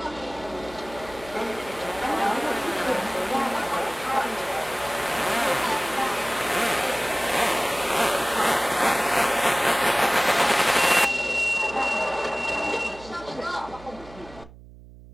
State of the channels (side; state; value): right; noise; hum, 20 dB below the sound